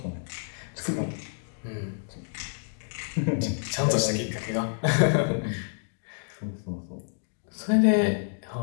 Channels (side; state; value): right; silent; digital silence